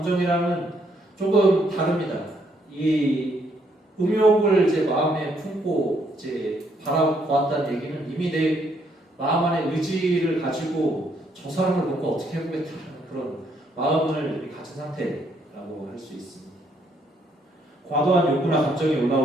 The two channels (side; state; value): both; normal; correlation 0.71